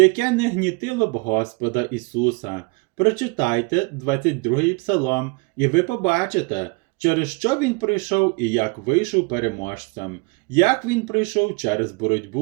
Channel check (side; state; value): left; quieter; 29.7 dB